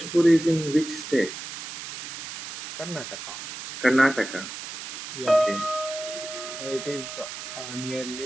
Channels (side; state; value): right; noise; hiss, 9 dB below the sound